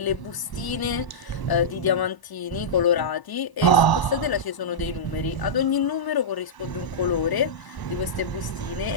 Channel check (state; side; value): late; right; 1.0 ms